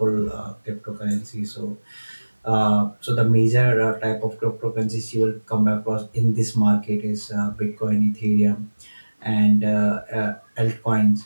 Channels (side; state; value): both; inverted; correlation -1.00